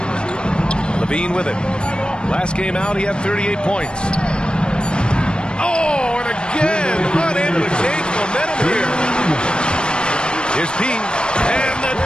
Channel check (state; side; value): late; right; 0.053 ms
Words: Levine with it. Last game out, he had 38 points. Oh, and again, unable to change momentum here. Here's P. And the